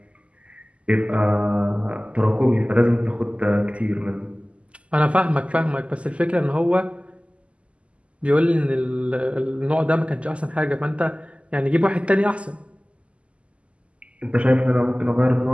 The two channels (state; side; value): late; left; 0.059 ms